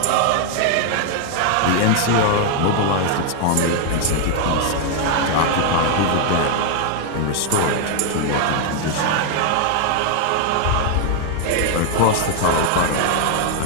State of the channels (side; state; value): both; different; correlation 0.00